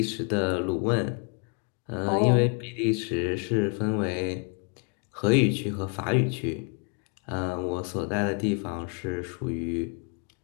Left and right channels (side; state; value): right; quieter; 38.8 dB